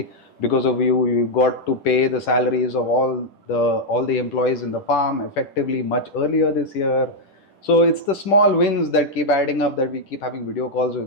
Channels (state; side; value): late; right; 10 ms